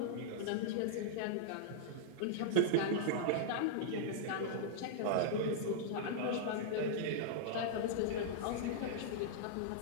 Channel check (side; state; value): both; different; correlation -0.02